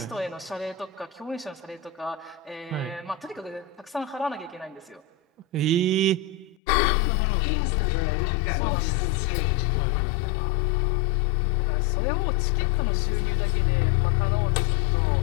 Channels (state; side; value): drops out; right; at 6.6 s